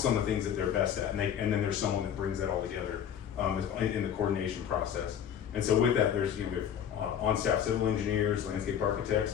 on the things that they're best at, and then there's someone that brings that all together in the coordination process. And so with that, there's we have on-staff civil engineers, landscape architects,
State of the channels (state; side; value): quieter; right; 9.0 dB